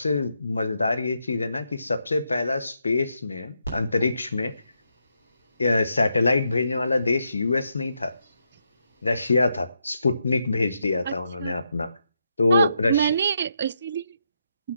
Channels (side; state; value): both; inverted; correlation -0.81